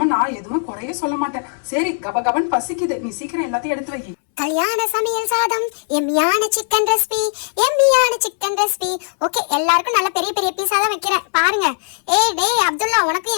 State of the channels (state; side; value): silent; right; 67 dB below the other